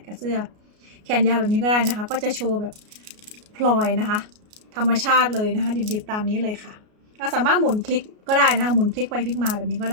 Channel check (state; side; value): late; left; 33 ms